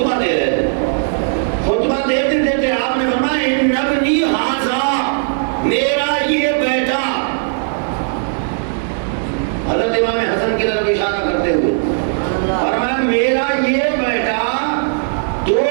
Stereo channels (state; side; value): silent; left; digital silence